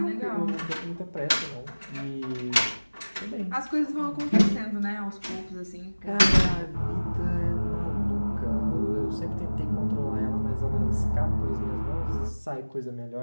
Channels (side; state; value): both; inverted; correlation -1.00